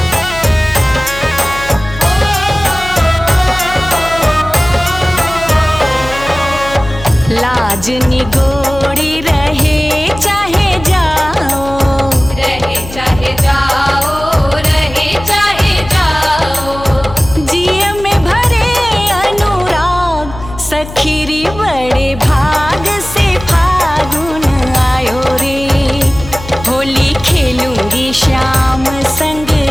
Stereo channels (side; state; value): left; noise; hum, 13 dB below the sound